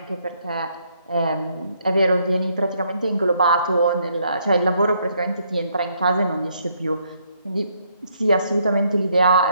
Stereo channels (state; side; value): inverted; both; correlation -0.71